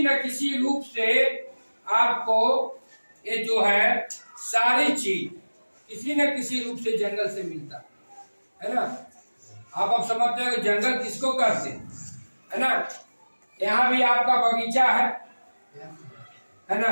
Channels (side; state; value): both; inverted; correlation -1.00